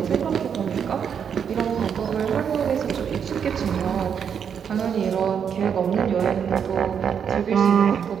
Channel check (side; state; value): left; quieter; 7.6 dB